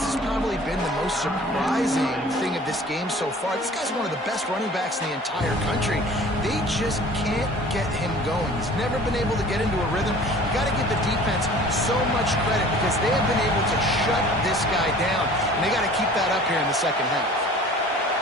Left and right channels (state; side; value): normal; both; correlation 0.47